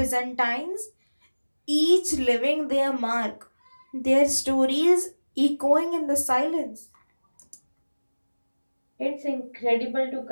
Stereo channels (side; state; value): both; inverted; correlation -1.00